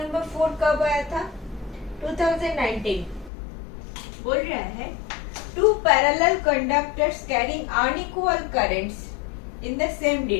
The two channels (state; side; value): drops out; right; at 3.3 s